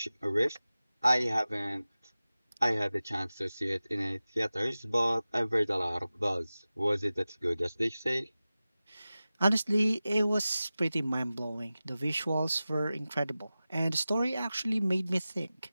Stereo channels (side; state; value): both; inverted; correlation -0.96